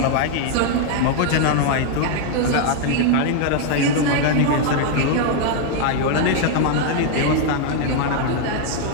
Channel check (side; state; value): both; different; correlation 0.00